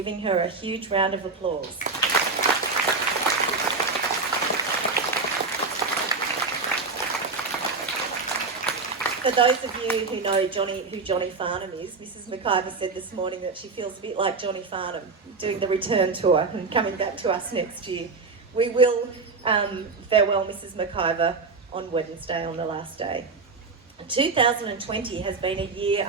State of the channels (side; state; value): left; quieter; 4.2 dB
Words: her a huge round of applause. For those of you who know who Johnny Farnham is, Mrs. McIver said this morning that she feels a bit like Johnny Farnham doing the return tour and coming back to us next year. We will farewell Mrs. McIver on Wednesday, on the last day. 2020 has been a year